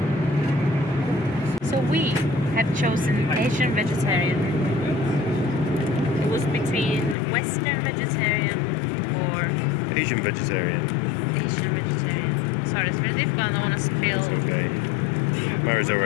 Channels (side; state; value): right; drops out; at 7.2 s